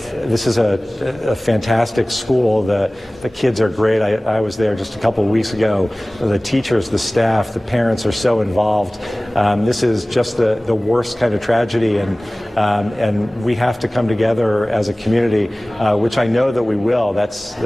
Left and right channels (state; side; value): normal; both; correlation 0.98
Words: This is a fantastic school. The kids are great. I was there just a couple of weeks ago. The teachers, the staff, the parents are so involved. This is just the worst kind of tragedy, and we have to come together as a community, which I know that we will. That's